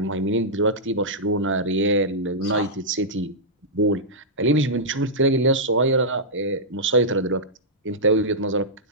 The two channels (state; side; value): normal; both; correlation -0.12